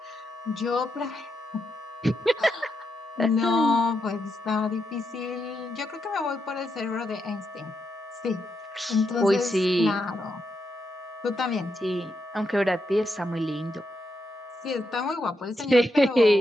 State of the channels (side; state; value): both; normal; correlation 0.83